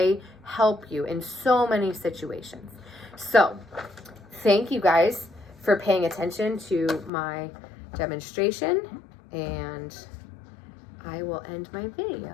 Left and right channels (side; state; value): right; drops out; at 7.1 s